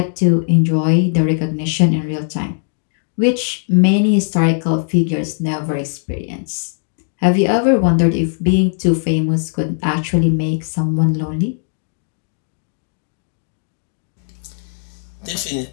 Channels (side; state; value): right; silent; digital silence